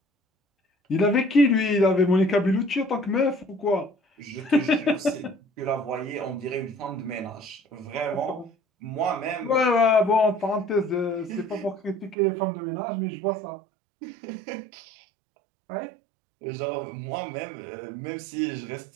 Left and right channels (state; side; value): drops out; left; at 12.2 s